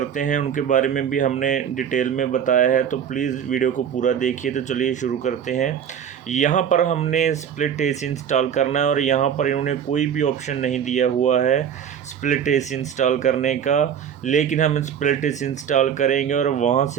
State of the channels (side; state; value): left; quieter; 8.4 dB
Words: हैं उनके बारे में भी हमने डिटेल में बताया है। तो प्लीज़ वीडियो को पूरा देखिए। तो चलिए शुरू करते हैं। यहाँ पर हमने स्प्लिट एसी इंस्टॉल करना है और यहाँ पर इन्होंने कोई भी ऑप्शन नहीं दिया हुआ है स्प्लिट एसी इंस्टॉल करने का, लेकिन हम स्प्लिट एसी इंस्टॉल करेंगे और वहाँ